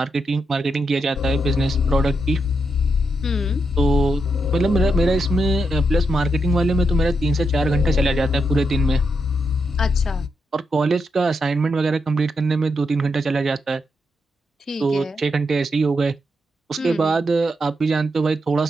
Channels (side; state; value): both; normal; correlation 0.83